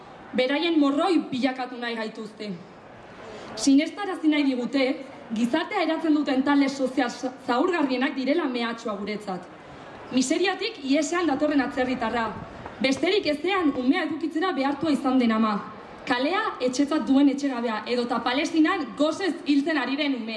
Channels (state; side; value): identical; both; correlation 1.00